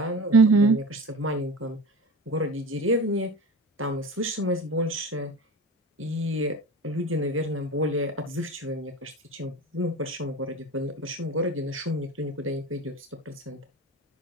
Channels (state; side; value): normal; both; correlation 0.33